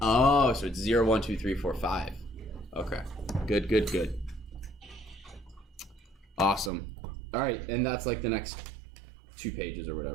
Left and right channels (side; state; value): left; drops out; at 6.7 s